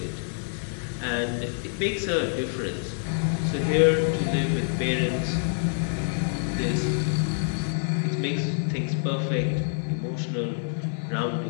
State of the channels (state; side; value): silent; right; digital silence